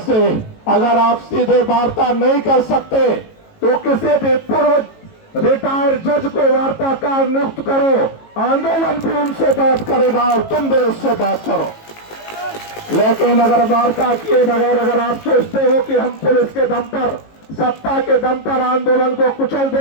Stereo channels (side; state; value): right; late; 18 ms